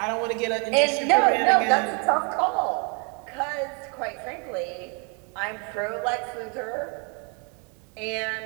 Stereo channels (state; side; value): quieter; left; 35.1 dB